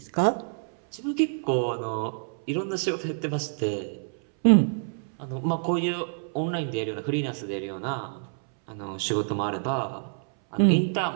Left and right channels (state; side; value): silent; left; 60 dB below the other